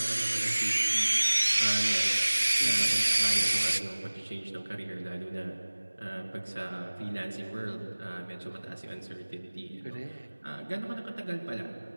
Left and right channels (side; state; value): both; inverted; correlation -1.00